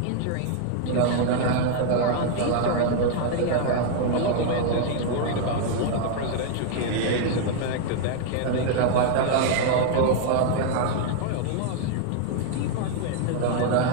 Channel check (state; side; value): different; both; correlation 0.00